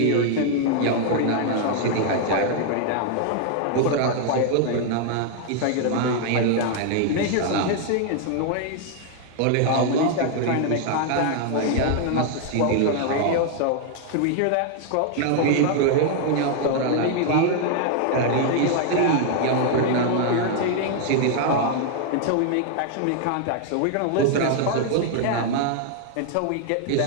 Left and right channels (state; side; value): different; both; correlation 0.00